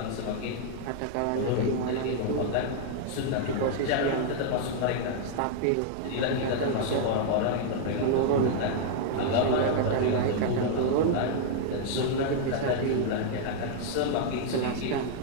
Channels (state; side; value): different; both; correlation -0.01